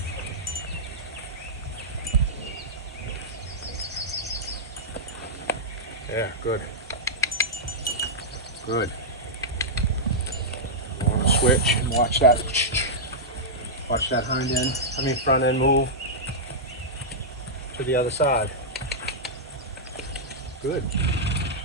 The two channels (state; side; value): normal; both; correlation -0.10